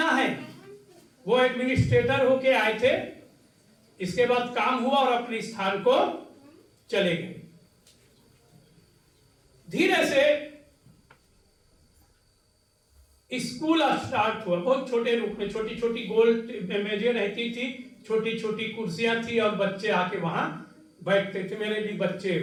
है। वो एडमिनिस्ट्रेटर होके आए थे, इसके बाद काम हुआ और अपने स्थान को चले गए। धीरे से स्कूल स्टार्ट हुआ, बहुत छोटे रूप में, छोटी छोटी गोल मेजें रहती थी, छोटी छोटी कुर्सियां थी और बच्चे आके वहां बैठते थे। मेरे भी बच्चे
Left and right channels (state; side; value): identical; both; correlation 1.00